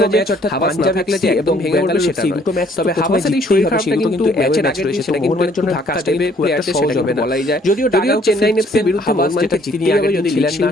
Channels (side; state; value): both; normal; correlation 0.62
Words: যে হাভাস না থাকলে যে একদম ভেঙে পড়বে সেটা দুটো ম্যাচ, তবে হাভাসের এই শরীর খারাপটা কিন্তু ম্যাচের আগে রয়েছে, সেটা মোহনবাগানের জন্য ধাক্কা দেবে, প্লেয়ারদের সহজ হবে না বলাই যায়। যদিও চেন্নাই এফসির বিরুদ্ধে মোহনবাগানকে জিততে হবে, যদি ছিলেন না